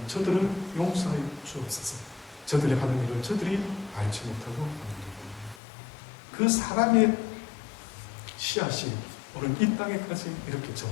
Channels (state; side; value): drops out; right; at 5.6 s